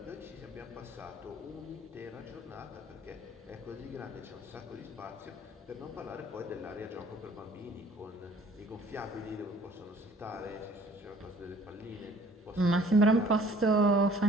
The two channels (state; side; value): normal; both; correlation 0.55